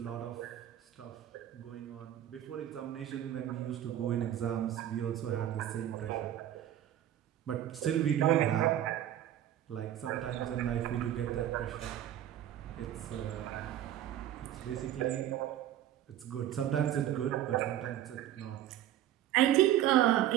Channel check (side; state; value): left; quieter; 12.0 dB